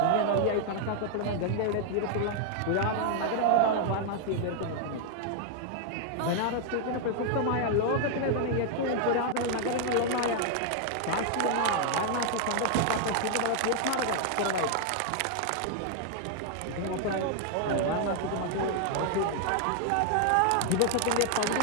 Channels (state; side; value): different; both; correlation 0.00